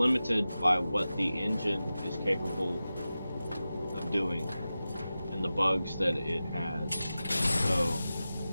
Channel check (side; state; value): both; inverted; correlation -0.94